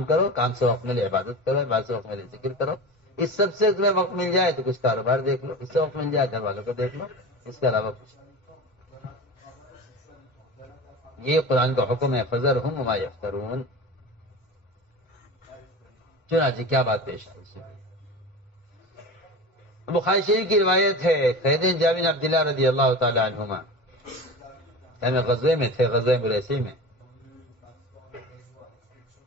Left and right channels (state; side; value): normal; both; correlation 0.31